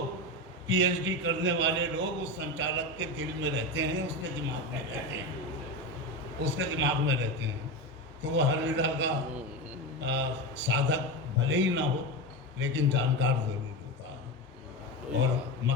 पीएचडी करने वाले लोग उस संचालक के दिल में रहते हैं, उसके दिमाग में रहते हैं, उसके दिमाग में रहते हैं। तो वो हर विधा का साधक भले ही ना हो लेकिन जानकार ज़रूर होता है। और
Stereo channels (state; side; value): normal; both; correlation 0.19